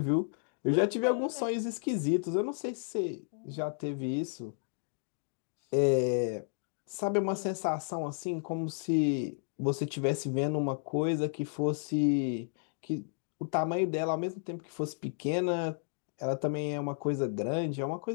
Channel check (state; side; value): silent; right; digital silence